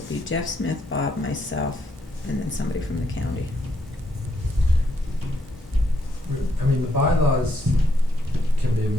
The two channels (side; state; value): both; normal; correlation 0.75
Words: be Jeff Smith, Bob, myself, and then somebody from the county. I mean, the bylaws can be